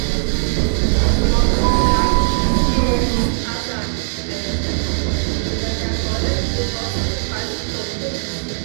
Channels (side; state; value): left; silent; digital silence